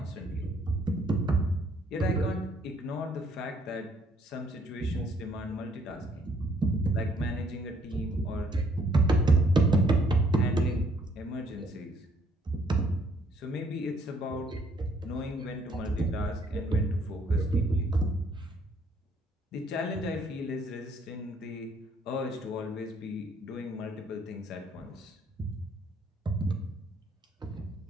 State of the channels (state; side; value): normal; both; correlation 0.65